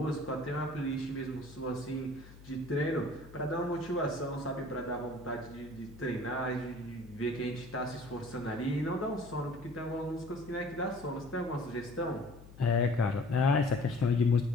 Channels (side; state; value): left; noise; hum, 19 dB below the sound